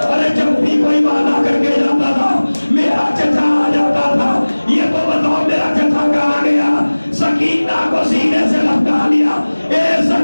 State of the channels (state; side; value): inverted; both; correlation -1.00